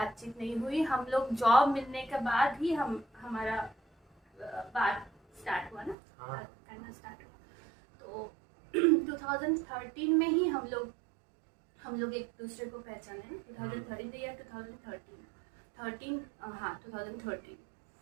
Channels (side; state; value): left; drops out; at 6.0 s